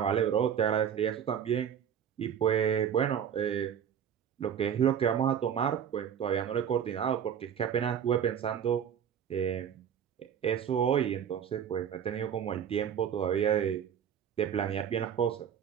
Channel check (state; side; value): quieter; left; 8.6 dB